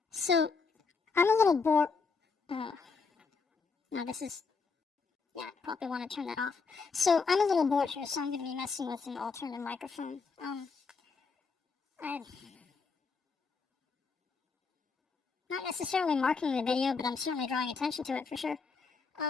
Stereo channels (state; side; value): quieter; right; 4.8 dB